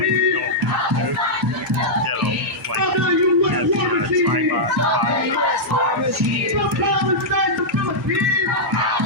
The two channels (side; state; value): both; normal; correlation -0.08